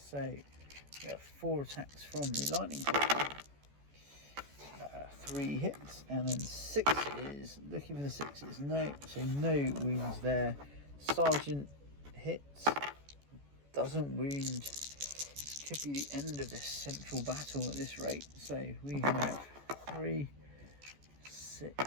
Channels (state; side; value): late; left; 14 ms